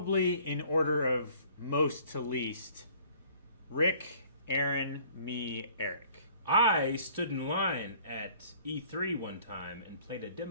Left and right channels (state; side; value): inverted; both; correlation -0.55